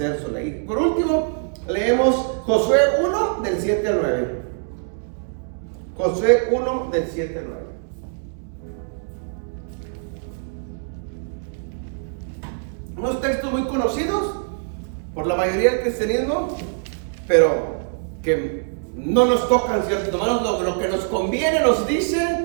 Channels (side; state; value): left; silent; digital silence